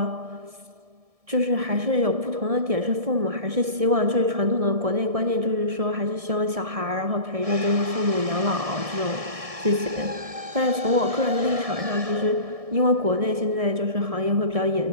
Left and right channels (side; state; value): left; late; 1.7 ms